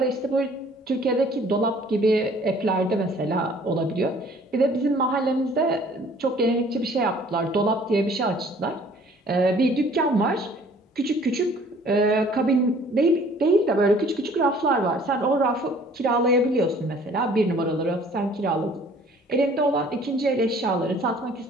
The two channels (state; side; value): normal; both; correlation 0.54